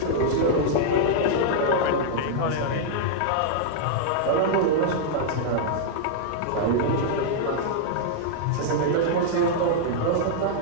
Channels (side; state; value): both; different; correlation -0.01